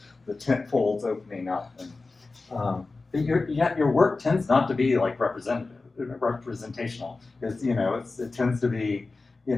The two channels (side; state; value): right; quieter; 3.7 dB